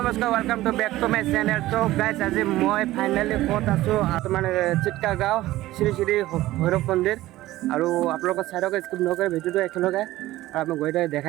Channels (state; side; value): quieter; left; 16.3 dB